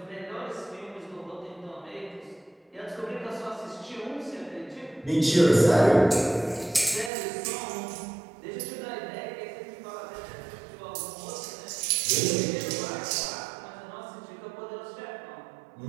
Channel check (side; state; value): left; drops out; at 7.1 s